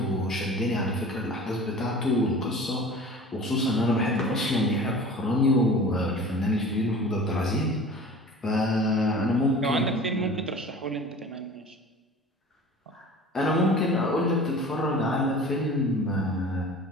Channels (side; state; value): both; normal; correlation 0.41